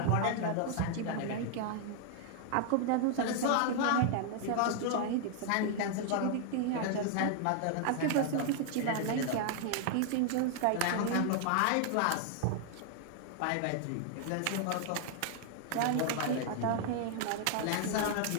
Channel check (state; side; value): different; both; correlation 0.00